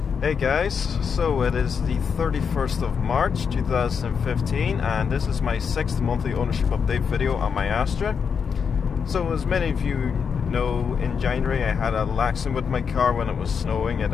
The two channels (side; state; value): right; quieter; 6.4 dB